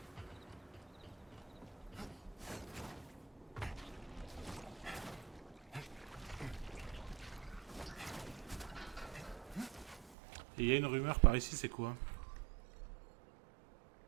Et il y a une rumeur par ici, c'est quoi?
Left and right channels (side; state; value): left; drops out; at 10.2 s